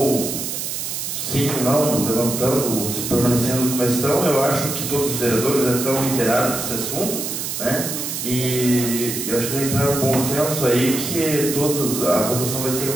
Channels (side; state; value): right; noise; hiss, 4 dB below the sound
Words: sim ou não, levantando, se permanecendo como estão, eu acho que todos os vereadores já estão inteirados desse assunto, né? E eu acho que vai entrar um bom senso aí que a votação vai ser